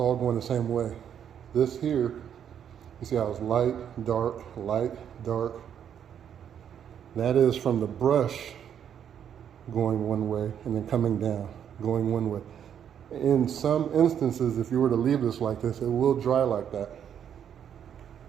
going the same way. This here, you see how it's light, dark, light, dark. That is from the brush going one way and then coming down, going one way. In some instances, if you were to leave this like this, it will dry like that.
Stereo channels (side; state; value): left; quieter; 8.9 dB